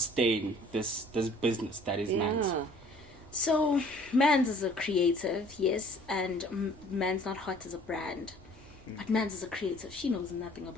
this business that is Mandz? Yeah. So, Mandz is a creative, yes, and Mandz Not Hot is a brand. But Mandz is a creative. She knows nothing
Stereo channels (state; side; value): noise; right; rumble, 25 dB below the sound